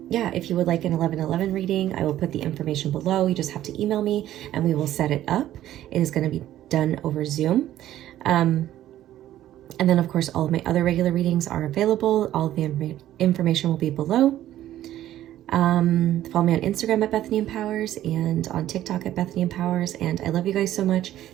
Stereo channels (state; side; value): quieter; left; 13.0 dB